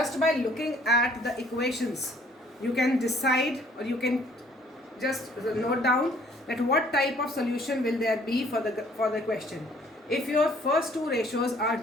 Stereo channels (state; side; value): normal; both; correlation 0.59